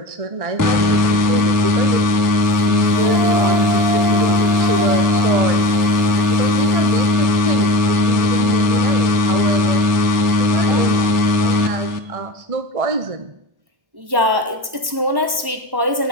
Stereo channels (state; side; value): late; left; 1.1 ms